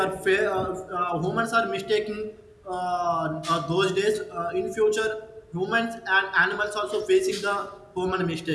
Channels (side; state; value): both; identical; correlation 1.00